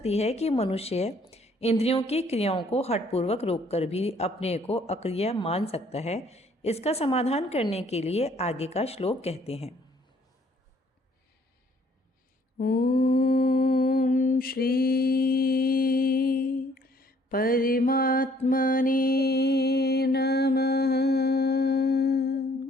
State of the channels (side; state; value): both; normal; correlation 0.62